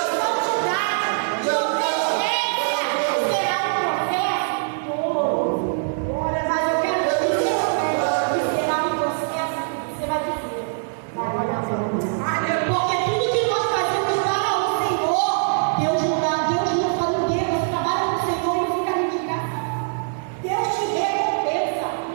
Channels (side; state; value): left; silent; digital silence